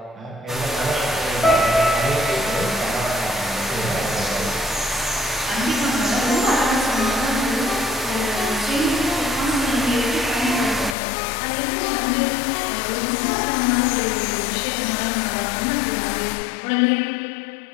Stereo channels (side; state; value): right; drops out; at 11.0 s